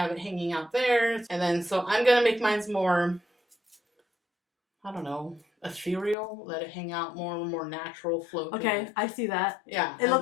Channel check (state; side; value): drops out; right; at 6.2 s